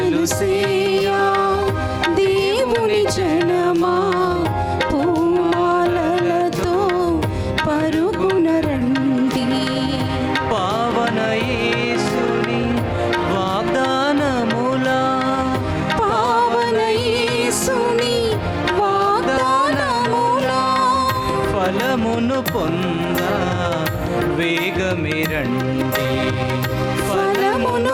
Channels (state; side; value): identical; both; correlation 1.00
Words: సేయా దేవుని జనమా పూమాలలతో పరుగున రండి. పావన యేసుని వాగ్దానములా, పావన యేసుని ఫలమును పొంద వేగమే రండి, ఫలమును